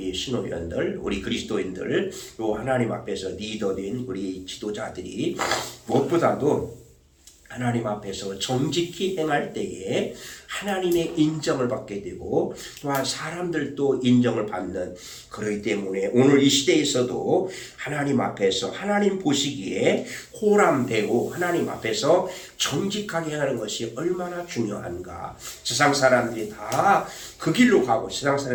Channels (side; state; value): both; identical; correlation 1.00